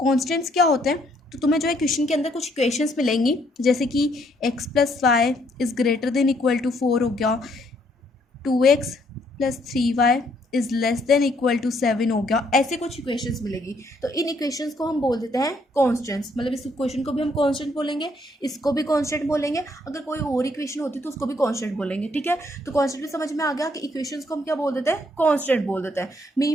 क्या होते हैं, तो तुम्हें जो है क्वेश्चन के अंदर कुछ इक्वेशंस मिलेंगी, जैसे कि x plus y is greater than equal to 4 हो गया, 2x plus 3y is less than equal to 7 हो गया। ऐसे कुछ इक्वेशंस मिलेगी, तो इन इक्वेशंस को हम बोल देते हैं कॉन्स्टेंट्स। मतलब इस इक्वेशन को भी हम कॉन्स्टेंट बोलेंगे, इसको भी कॉन्स्टेंट बोलेंगे, अगर कोई और इक्वेशन होती तो उसको भी कॉन्स्टेंट बोलेंगे। ठीक है, तो कॉन्स्टेंट भी समझ में आ गया कि इक्वेशंस को हम क्या बोल देते हैं, कॉन्स्टेंट बोल देते हैं।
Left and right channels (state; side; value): normal; both; correlation 0.69